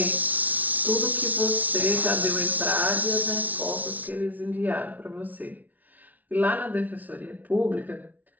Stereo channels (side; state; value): left; late; 0.075 ms